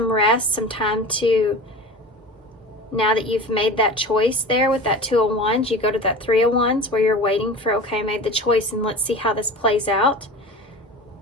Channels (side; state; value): both; normal; correlation 0.35